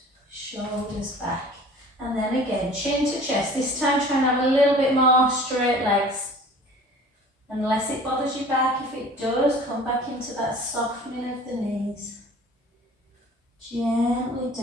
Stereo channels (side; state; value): both; normal; correlation 0.46